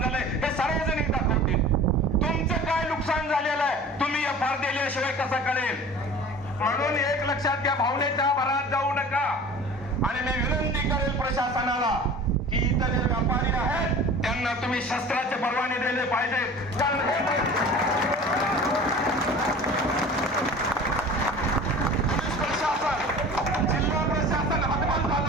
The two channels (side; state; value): both; normal; correlation 0.41